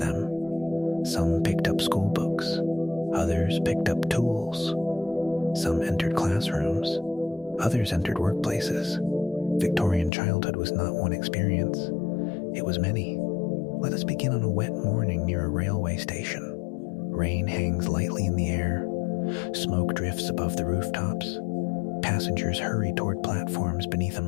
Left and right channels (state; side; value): drops out; right; at 10.1 s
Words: Some picked up school books, others picked up tools. Some entered classrooms, others entered workplaces. Victorian childhood was not one experience, it was many. Let us begin on a wet morning near a railway station. Rain hangs lightly in the air, smoke drifts above the rooftops. Passengers hurry toward platforms beneath